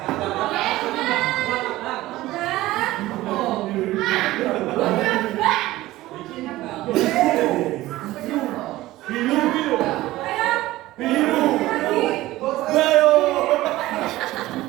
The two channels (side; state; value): left; quieter; 17.0 dB